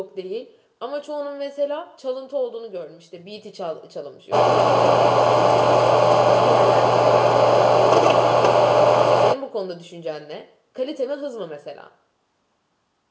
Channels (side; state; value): both; identical; correlation 1.00